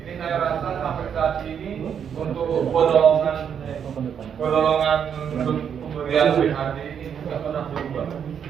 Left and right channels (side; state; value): left; quieter; 7.9 dB